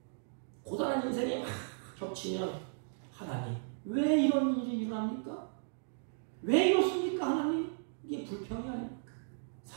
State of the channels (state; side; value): silent; left; digital silence